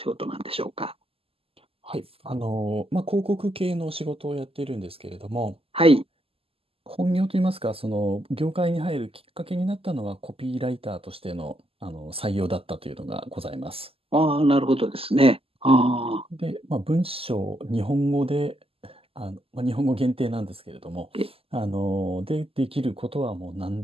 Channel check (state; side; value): late; left; 0.28 ms